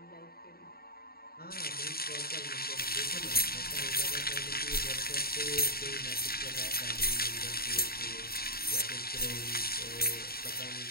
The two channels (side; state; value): right; late; 0.44 ms